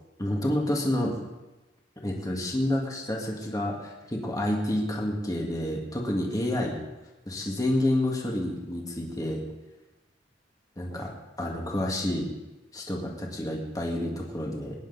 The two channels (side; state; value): both; normal; correlation 0.84